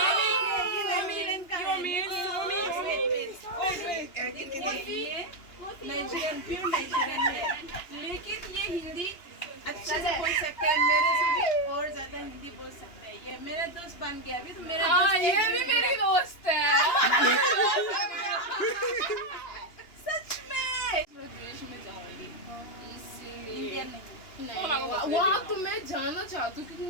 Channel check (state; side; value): late; right; 2.9 ms